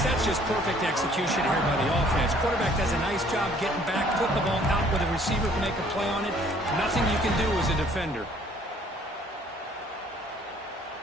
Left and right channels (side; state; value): both; normal; correlation 0.59